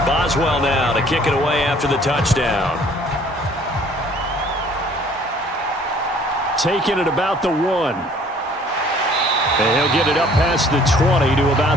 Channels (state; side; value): normal; both; correlation 0.56